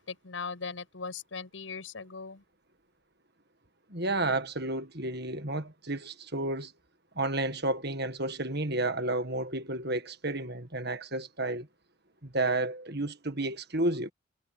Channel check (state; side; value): normal; both; correlation -0.07